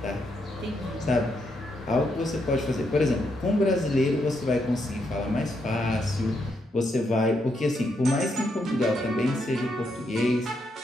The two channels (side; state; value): both; normal; correlation 0.79